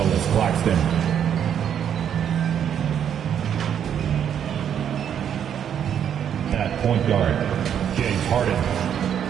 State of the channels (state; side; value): quieter; left; 8.9 dB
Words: Claxton. At point guard, James Harden.